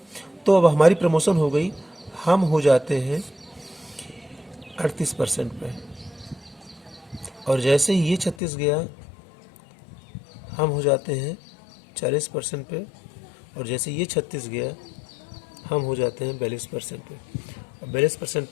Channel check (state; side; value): drops out; right; at 8.3 s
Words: तो अब हमारी प्रमोशन हो गई, हम हो जाते हैं 38% पे। और जैसे ही ये 36 गया हम हो जाते हैं 40% पे, और जैसे ये 36 गया हम हो जाते हैं 42% पे, और 42%